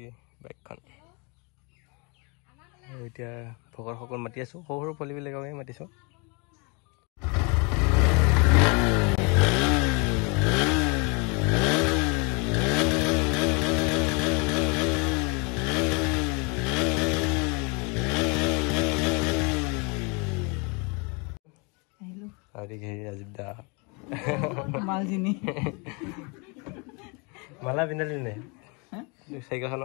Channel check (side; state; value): right; quieter; 31.9 dB